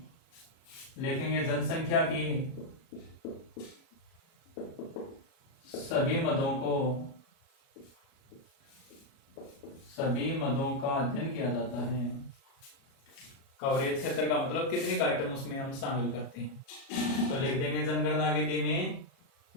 लिखेंगे जनसंख्या की सभी मदों का अध्ययन किया जाता है। कवरेज क्षेत्र का मतलब कितने का आइटम उसमें हम शामिल करते हैं। तो लिख देंगे जनगणना विधि में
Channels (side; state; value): right; late; 37 ms